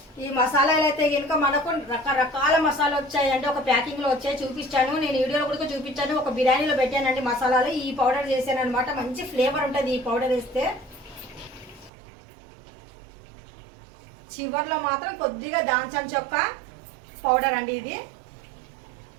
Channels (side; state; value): left; drops out; at 11.9 s